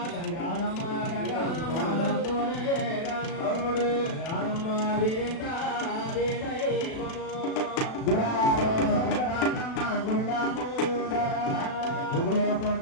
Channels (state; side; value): late; right; 36 ms